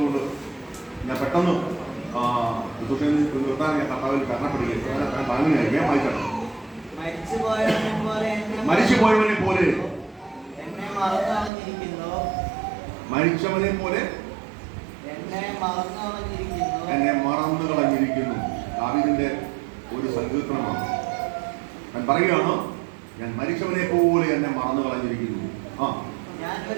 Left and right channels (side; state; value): left; drops out; at 11.5 s